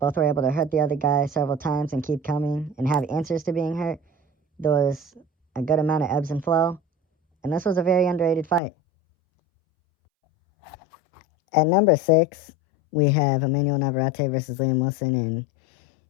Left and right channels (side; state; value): right; drops out; at 8.6 s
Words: were able to hurt the other guy several times and keep coming and have answers to being hurt. There was a good amount of ebbs and flow, and this was a very underrated fight. At number 6, we have Emmanuel Navarrete versus Liam Wilson, and